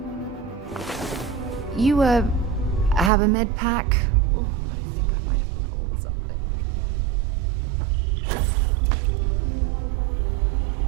You, have a med pack? Oh, I think I might have pulled something.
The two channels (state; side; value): drops out; left; at 3.1 s